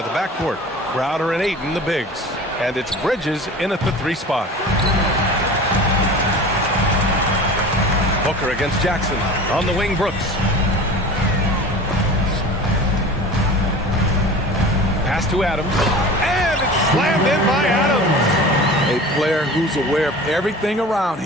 the backcourt. Crowder and Ayton, the bigs. And it's Bridges in at the 3 spot. Booker against Jackson. On the wing, Brooks. Pass to Adams. And it's slammed in by Adams. A player who's aware of everything around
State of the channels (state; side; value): normal; both; correlation 0.37